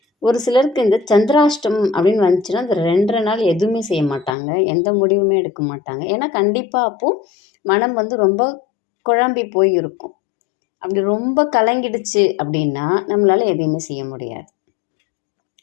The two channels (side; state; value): right; drops out; at 4.4 s